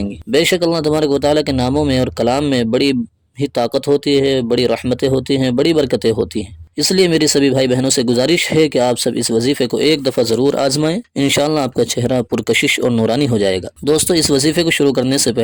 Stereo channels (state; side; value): identical; both; correlation 1.00